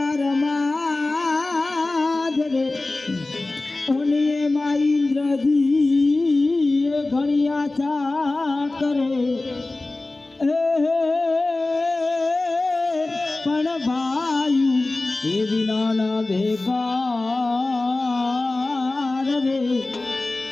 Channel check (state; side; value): quieter; right; 3.1 dB